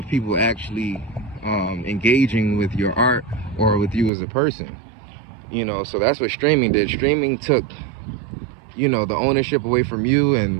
people actually engaging with your art or with you as a person. So that's what streaming did. Streaming took the ownership away from you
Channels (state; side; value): drops out; left; at 4.1 s